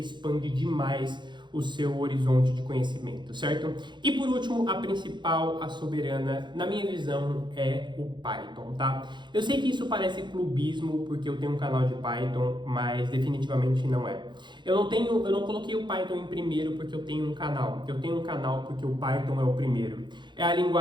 demais o seu horizonte de conhecimento, certo? E por último, a principal, a soberana, na minha visão, é o Python, tá? Eu sei que isso parece clubismo, porque eu tenho um canal de Python, mas definitivamente não é. Eu não coloquei o Python em primeiro porque eu tenho um canal. Eu tenho um canal porque o Python é o primeiro. É a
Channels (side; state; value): left; late; 0.22 ms